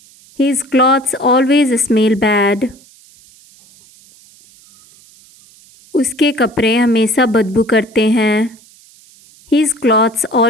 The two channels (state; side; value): noise; right; hiss, 27 dB below the sound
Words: His clothes always smell bad. उसके कपड़े हमेशा बदबू करते हैं। His clothes